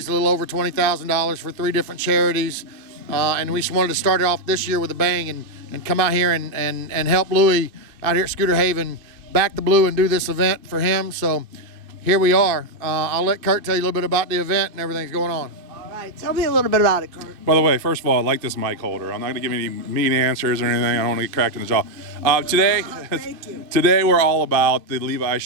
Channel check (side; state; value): left; late; 2.5 ms